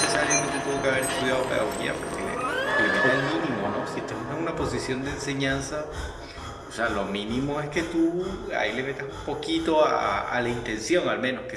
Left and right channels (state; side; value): identical; both; correlation 1.00